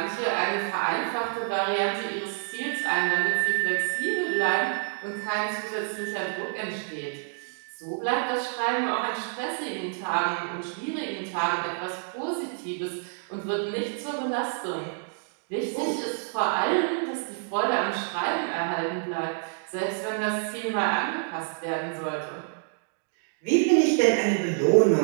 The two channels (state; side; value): silent; left; digital silence